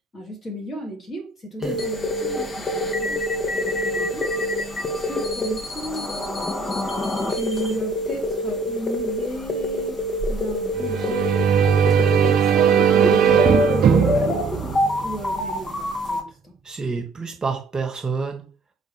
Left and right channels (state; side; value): quieter; left; 3.4 dB